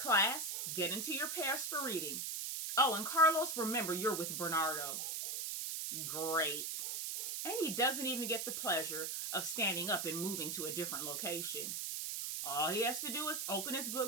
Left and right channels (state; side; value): noise; right; hiss, 3 dB below the sound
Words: get into your pairs for reading. Oh, and Carlos, remember you're with Bernardo. Great. And he doesn't even get the pleasure of standing up and moving to a different location. All he has to do is open his